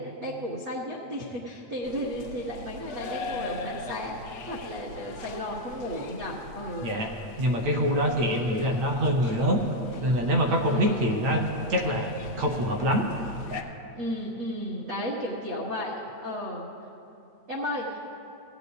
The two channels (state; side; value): late; left; 8.9 ms